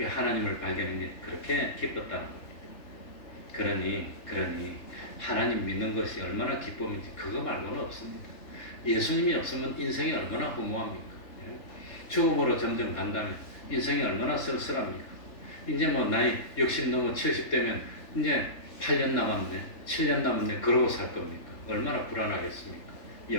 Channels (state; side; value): late; right; 3.4 ms